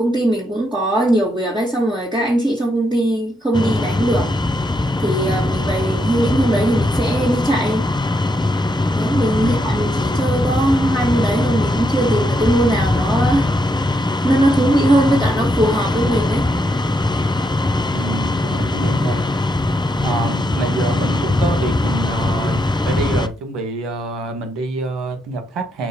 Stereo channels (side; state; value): both; normal; correlation 0.80